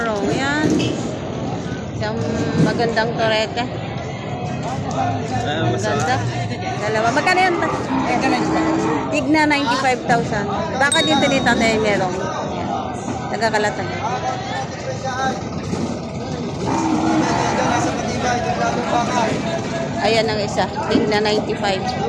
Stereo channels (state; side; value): identical; both; correlation 1.00